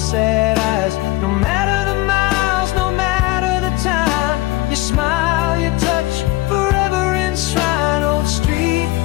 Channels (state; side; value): quieter; right; 19.0 dB